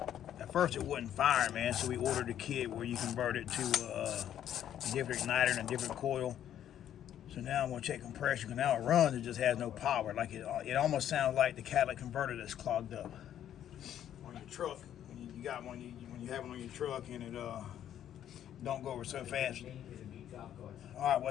At first it wasn't firing, man, so we ordered a kit where you convert it to a different igniter and a different coil. So now I'm going to check compression, because now it runs, it just has no power. Like it almost sounds like the catalytic converter that's clogged up. On your truck, when you got one, when you have one on your truck and it don't go over so fast. Alright,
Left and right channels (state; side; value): quieter; right; 10.6 dB